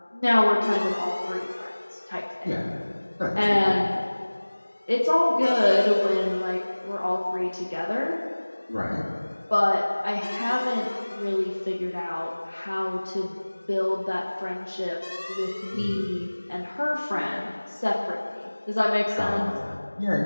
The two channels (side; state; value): both; inverted; correlation -1.00